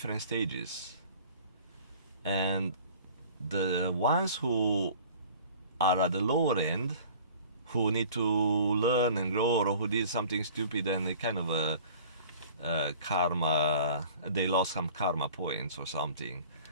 stages. And the ones who are at the lower end, who need to learn and grow, or who did something stupid and they kind of karma, they lost some karma points or something.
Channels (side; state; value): both; inverted; correlation -0.47